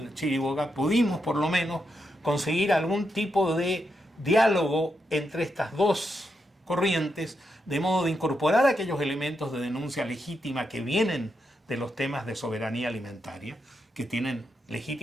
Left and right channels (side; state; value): both; normal; correlation 0.84